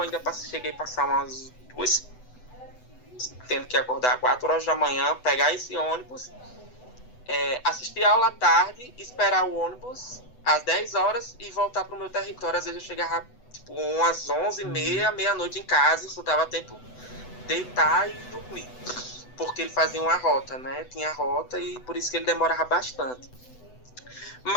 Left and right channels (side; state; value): right; late; 8.0 ms